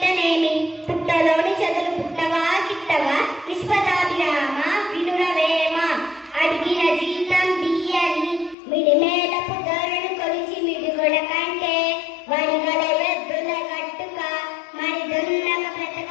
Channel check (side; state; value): right; drops out; at 8.6 s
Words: పుట్టలోని చదులు పుట్టవా గిట్టవా విశ్వదాభిరామ వినురవేమ అడిగిన జీతం బియ్యని మిడిమేలపు ధరను కొలిచి మిడిగొడ కంటే వడిగల ఎద్దుల గట్టుక మరి దొన్నక